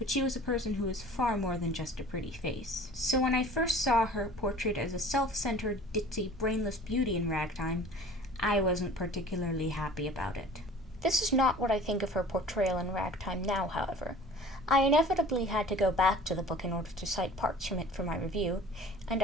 she was a person who was far more than just a pretty face. So when I first saw her portrayed as a self-centered, ditzy, brainless beauty in Ragtime, I wasn't particularly happy about it. This is not what I think of her portrayal in Ragtime now, however. I inevitably had to go back to the book in order to cite parts from it for my review, and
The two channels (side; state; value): both; normal; correlation 0.45